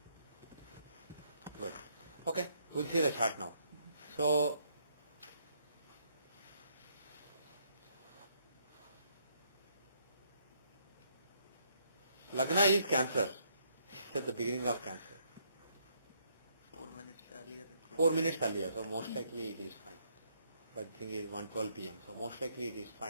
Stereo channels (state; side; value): inverted; both; correlation -0.71